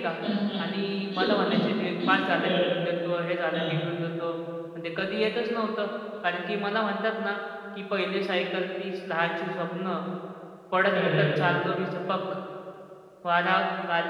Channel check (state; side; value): identical; both; correlation 1.00